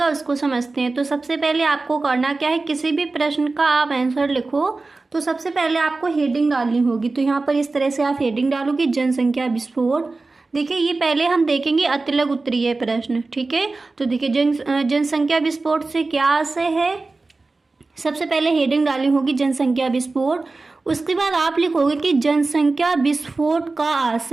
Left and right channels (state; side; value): quieter; left; 3.6 dB